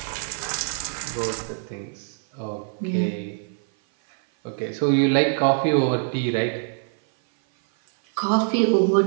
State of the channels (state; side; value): silent; left; 57 dB below the other